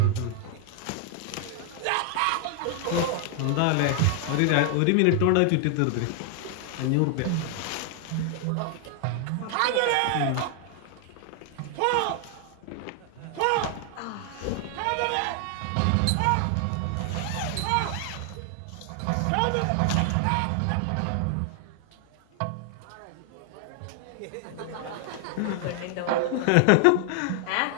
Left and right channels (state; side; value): different; both; correlation 0.00